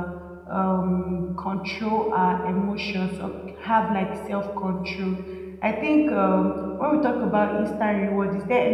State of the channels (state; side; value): identical; both; correlation 1.00